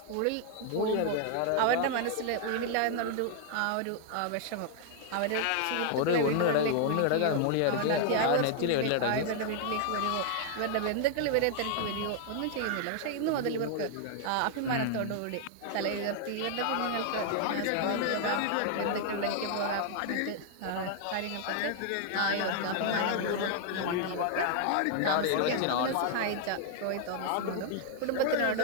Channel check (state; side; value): different; both; correlation 0.00